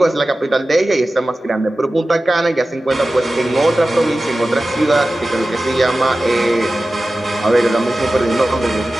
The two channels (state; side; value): normal; both; correlation 0.95